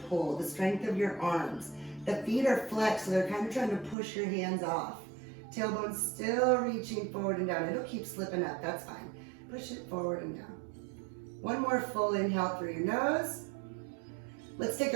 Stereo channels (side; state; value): left; drops out; at 4.0 s